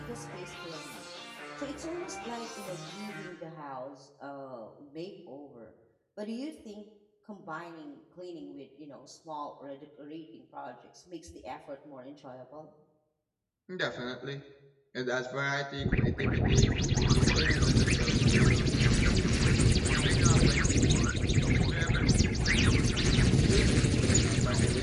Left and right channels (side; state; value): both; identical; correlation 1.00